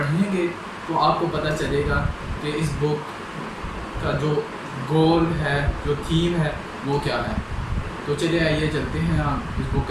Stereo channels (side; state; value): both; identical; correlation 1.00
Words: तो आपको पता चलेगा कि इस बुक का जो गोल है, जो थीम है वो क्या है। तो चलिए आइए चलते हैं, हम इस बुक